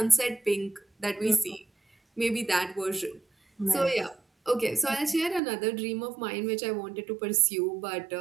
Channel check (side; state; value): left; drops out; at 5.4 s